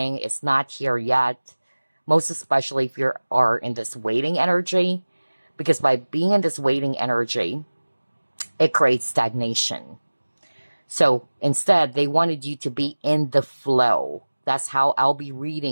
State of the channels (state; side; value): inverted; both; correlation -1.00